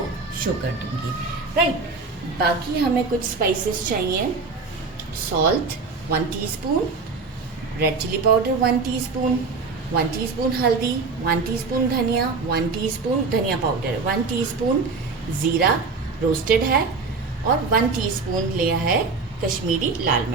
शो कर दूँगी, राइट। बाकी हमें कुछ स्पाइसेस चाहिए। Salt 1 teaspoon, red chilli powder 1 teaspoon, 1 teaspoon हल्दी, 1 टीस्पून धनिया, 1 टीस्पून धनिया पाउडर, 1 टीस्पून ज़ीरा रोस्टेड है और 1 टीस्पून लिया है कश्मीरी लाल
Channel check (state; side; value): quieter; left; 4.3 dB